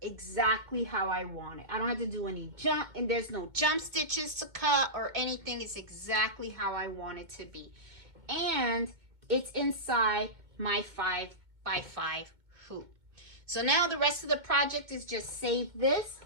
exactly how I want it. I don't have to do any jump, and there's no jump stitches to cut or anything. It's exactly how I want it to be. And it's inside my 5x5 hoop. So now the rest of the project is just save this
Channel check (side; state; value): left; late; 2.2 ms